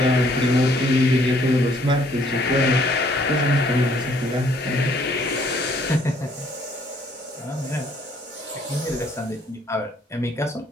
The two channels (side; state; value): both; normal; correlation 0.63